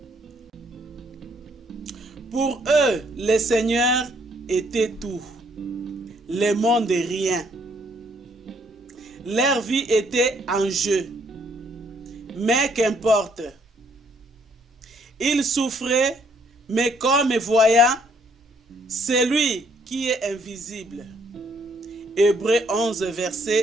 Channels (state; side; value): normal; both; correlation 0.67